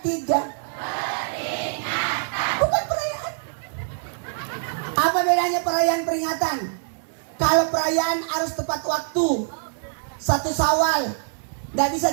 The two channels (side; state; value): left; silent; 62 dB below the other